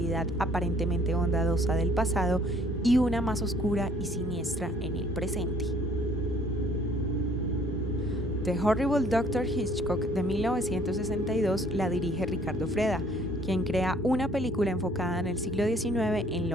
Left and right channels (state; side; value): normal; both; correlation 0.59